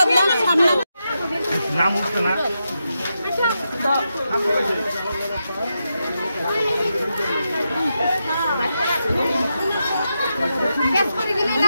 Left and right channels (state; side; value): inverted; both; correlation -0.87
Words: নাম উঠছে না